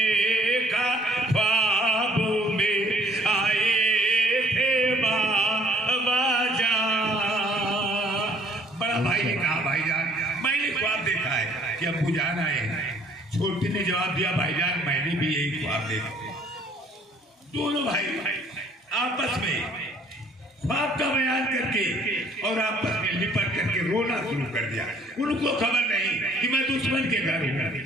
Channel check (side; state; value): both; normal; correlation 0.59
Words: ख्वाब में आए थे बाबा जा। बड़ा भाई ने कहा भाईजान मैंने ख्वाब देखा है कि अब्बू जान आए हैं। छोटे ने जवाब दिया भाईजान मैंने भी यही ख्वाब देखा। दोनों भाई आपस में ख्वाब का बयान करके और आपस में लिपट करके रोना शुरू कर दिया। उनको खबर नहीं कि मैं दुश्मन के घर हूँ